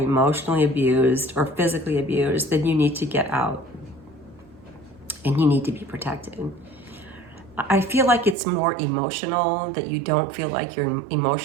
abused or physically abused, then you need to get out and you need to be protected. I feel like it's more emotional, that you don't feel like your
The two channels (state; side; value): drops out; left; at 8.3 s